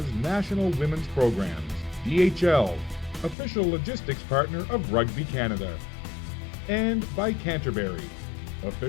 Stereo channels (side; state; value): right; drops out; at 3.4 s